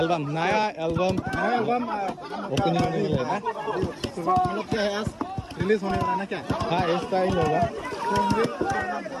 नया एल्बम ओपनिंग होने वाला है ना? मतलब क्या है? आज रिलीज होने वाला है ना क्या? हाँ इस टाइम होगा।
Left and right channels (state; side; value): identical; both; correlation 1.00